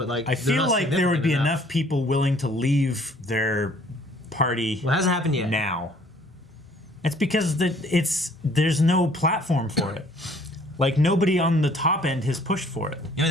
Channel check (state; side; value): normal; both; correlation 0.58